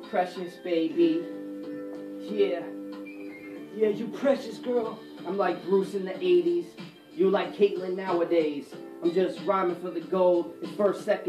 precious baby. Yeah, Yeah, you precious girl. I'm like Bruce in the 80s. You like Caitlyn nowadays. I'm just rhyming for the gold. It's first,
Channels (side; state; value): both; identical; correlation 1.00